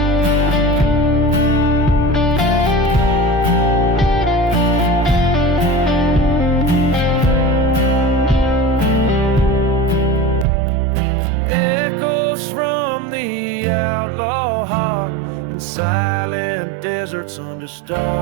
silent deserts under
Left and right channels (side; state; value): left; drops out; at 10.5 s